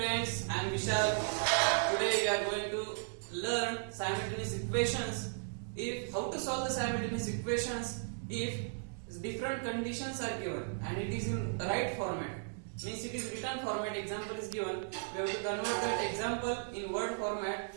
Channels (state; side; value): silent; left; digital silence